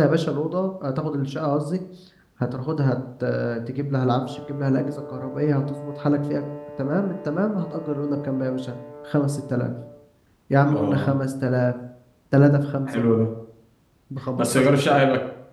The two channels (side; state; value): both; identical; correlation 1.00